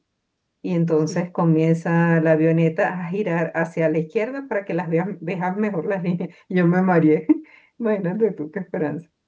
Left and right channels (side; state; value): both; identical; correlation 1.00